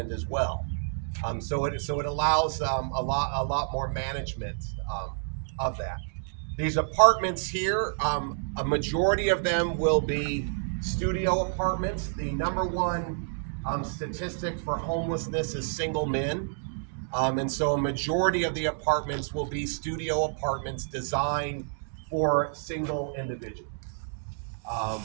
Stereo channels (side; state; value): left; silent; digital silence